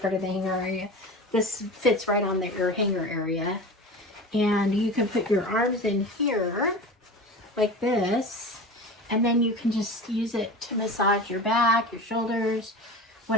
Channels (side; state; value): both; normal; correlation 0.32